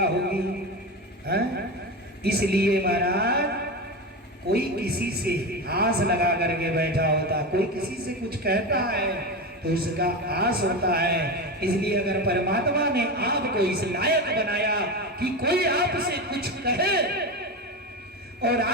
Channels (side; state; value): both; normal; correlation 0.21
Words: होगी। इसलिए महाराज कोई किसी से आस लगा करके बैठा होता, कोई किसी से कुछ कहता है तो उसका आस होता है। इसलिए अगर परमात्मा ने आपको इस लायक बनाया कि कोई आपसे कुछ कहे और